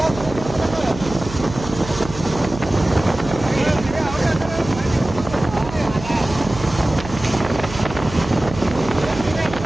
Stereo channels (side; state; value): right; noise; hum, 12 dB below the sound